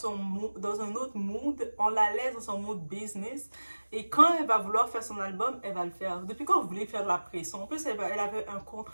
un autre mood. On la laisse dans son mood business. Et quand elle va vouloir faire son album, elle va le faire. Depuis quand vous voulez faire de la pression? En plus, elle avait un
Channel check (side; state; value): both; inverted; correlation -1.00